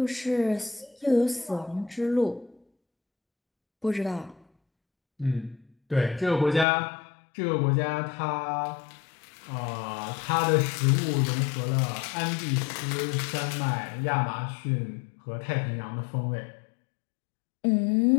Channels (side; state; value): right; drops out; at 6.7 s